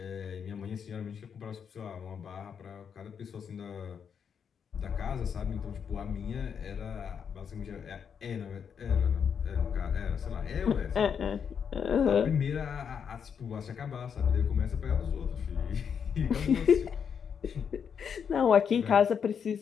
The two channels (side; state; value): right; quieter; 7.2 dB